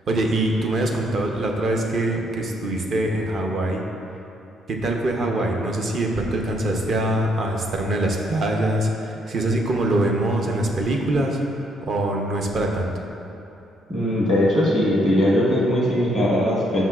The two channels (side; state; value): both; normal; correlation 0.71